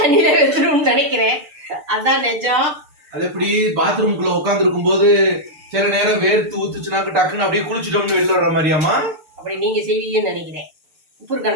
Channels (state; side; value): late; left; 6.7 ms